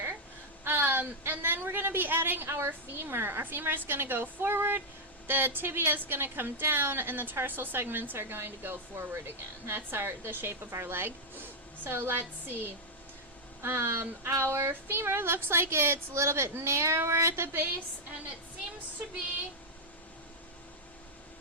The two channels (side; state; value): both; normal; correlation -0.02